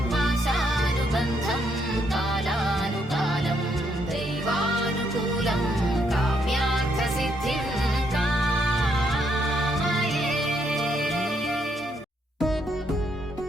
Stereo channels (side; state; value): both; normal; correlation 0.74